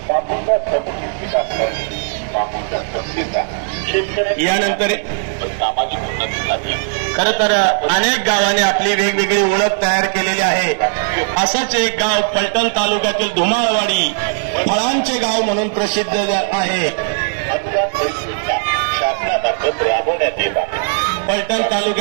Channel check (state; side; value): silent; left; digital silence